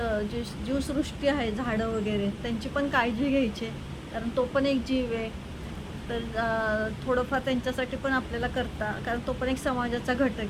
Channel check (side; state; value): both; identical; correlation 1.00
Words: जी जीवसृष्टी आहे, झाडं वगैरे, त्यांची पण काळजी घ्यायची आहे. कारण तो पण एक जीव आहे. तर थोडंफार त्यांच्यासाठी पण आपल्याला कारण तो पण एक समाजाचा